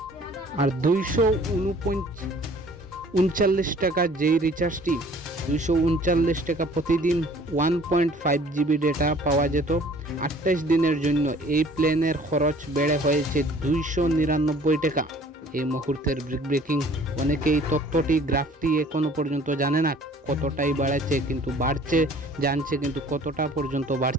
আর 239 টাকা যেই রিচার্জটি, 239 টাকা প্রতিদিন 1.5 জিবি ডেটা পাওয়া যেত 28 দিনের জন্য। এই প্ল্যানের খরচ বেড়ে হয়েছে 299 টাকা। এই মুহূর্তের ব্রেকিং। অনেকেই তথ্যটি গ্রাফটি এখনো পর্যন্ত জানে না কতটাই বাড়ছে, কিন্তু বাড়ছে জানছে, কিন্তু কতটা পর্যন্ত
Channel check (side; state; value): both; normal; correlation 0.53